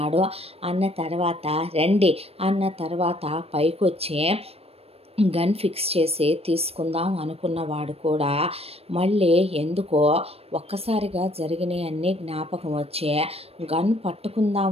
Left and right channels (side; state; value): left; late; 0.29 ms